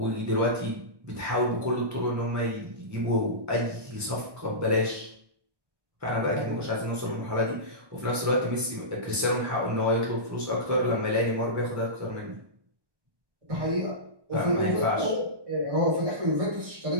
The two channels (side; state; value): left; late; 1.2 ms